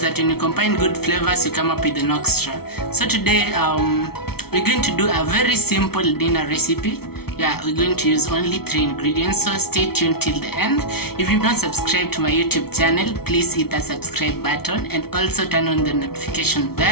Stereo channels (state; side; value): late; right; 0.95 ms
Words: that when you combine good flavors you come up with an extra. So today we're going to do a very simple dinner recipe. We're going to use only 3 ingredients, so stay tuned till the end. If you've not subscribed to my YouTube channel, please hit the subscribe button and also turn on the notification